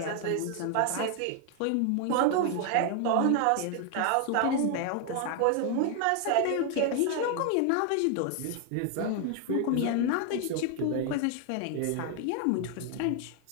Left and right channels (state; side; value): different; both; correlation 0.00